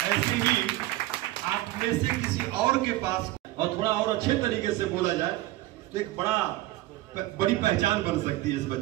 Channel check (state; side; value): quieter; left; 16.9 dB